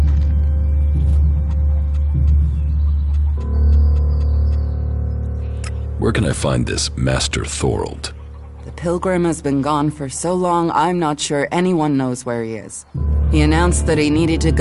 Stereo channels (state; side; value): identical; both; correlation 1.00